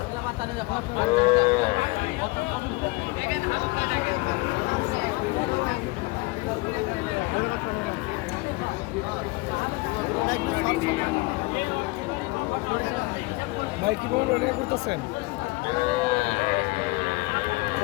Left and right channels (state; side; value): quieter; right; 24.2 dB